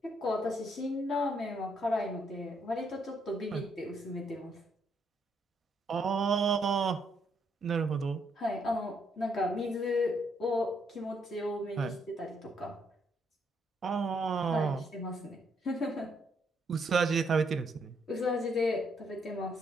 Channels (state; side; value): normal; both; correlation 0.73